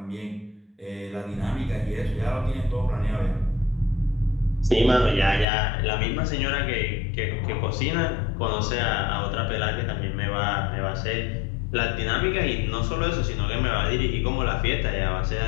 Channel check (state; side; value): drops out; right; at 5.5 s